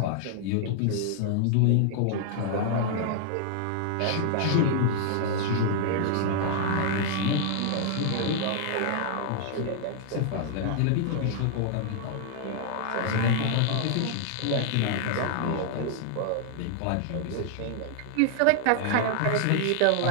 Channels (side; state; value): both; different; correlation -0.01